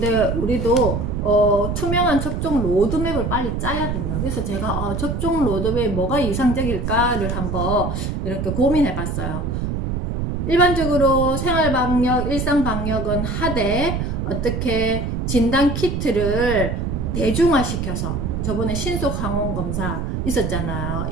우리도 투명한 접종 로드맵을 빨리 짜야 된다. 그래서 제가 접종 로드맵 뭐가 이상적일까를 한번 이렇게 고민해 봤어요. 일반적으로 생활방역, 일상방역은 하되 어떻게 진단키트를 대중화시켜서, 저번에 신속항원검사 있었잖아요.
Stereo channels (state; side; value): noise; right; rumble, 2 dB below the sound